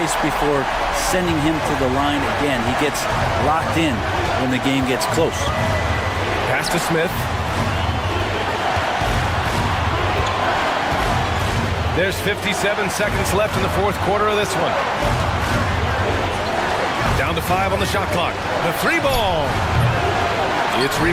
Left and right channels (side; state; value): both; identical; correlation 1.00